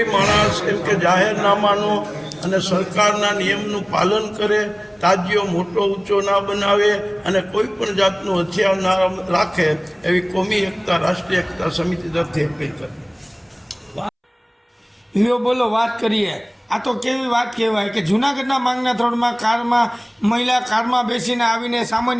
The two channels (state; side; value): identical; both; correlation 1.00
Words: માણસ એમ કે જાહેરનામાનો અને સરકારના નિયમનું પાલન કરે, તાજિયો મોટો ઊંચો ના બનાવે અને કોઈ પણ જાતનું હથિયાર ના રાખે એવી કોમી એકતા, રાષ્ટ્રીય એકતા સમિતિ તરફથી અપીલ કરી. લ્યો બોલો, વાત કરીએ. આ તો કેવી વાત કહેવાય કે જૂનાગઢના માંગના થોડમાં મહિલા કારમાં બેસીને આવીને